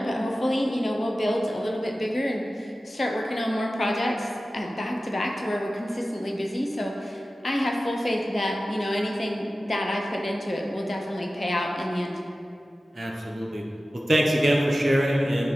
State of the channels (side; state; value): both; normal; correlation 0.95